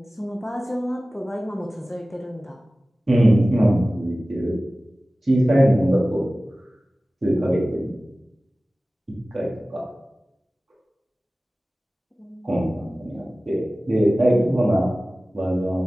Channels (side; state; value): both; normal; correlation 0.97